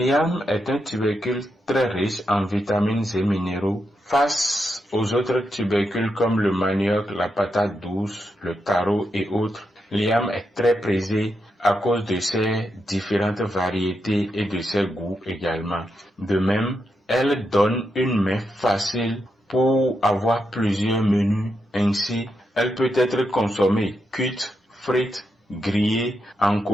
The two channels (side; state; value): both; normal; correlation 0.84